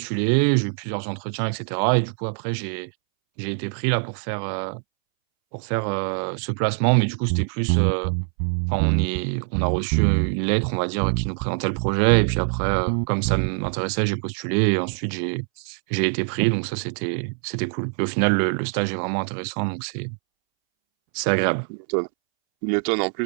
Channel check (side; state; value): left; silent; 63 dB below the other